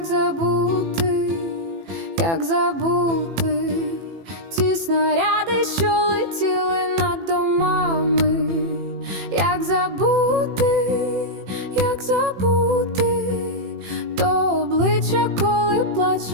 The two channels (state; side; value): late; left; 18 ms